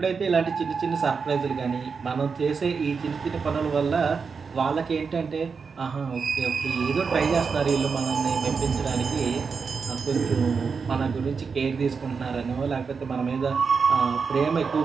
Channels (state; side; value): quieter; left; 5.4 dB